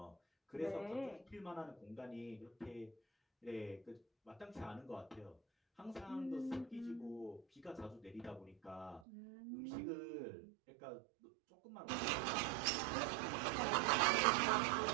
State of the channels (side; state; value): left; drops out; at 9.0 s